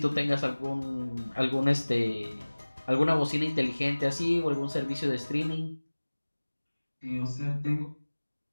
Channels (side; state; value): both; inverted; correlation -1.00